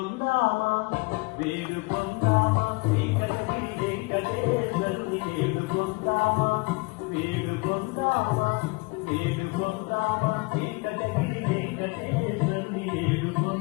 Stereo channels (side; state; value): right; quieter; 26.7 dB